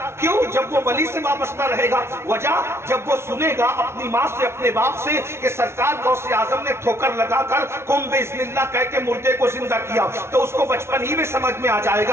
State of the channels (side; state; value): left; late; 0.12 ms